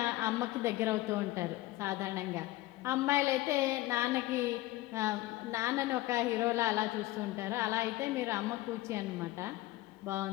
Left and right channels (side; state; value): right; quieter; 17.6 dB